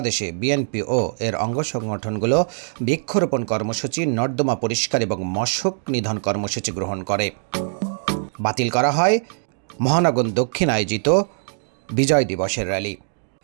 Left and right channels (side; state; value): left; silent; digital silence